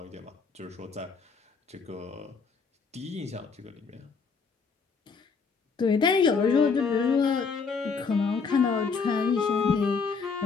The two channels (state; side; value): quieter; right; 5.1 dB